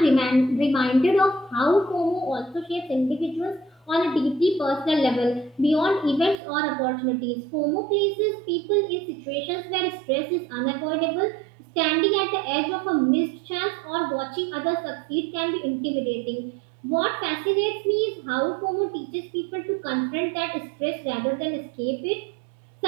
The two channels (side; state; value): left; drops out; at 6.4 s